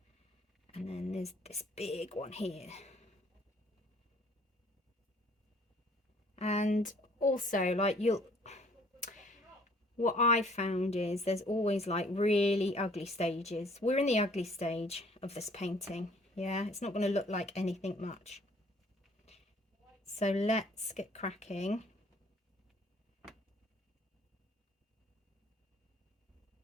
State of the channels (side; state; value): both; normal; correlation 0.58